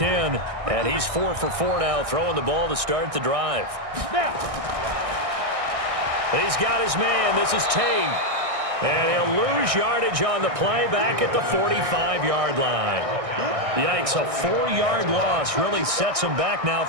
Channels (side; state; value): left; late; 1.6 ms